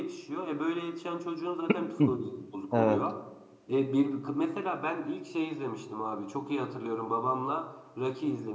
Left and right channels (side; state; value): both; identical; correlation 1.00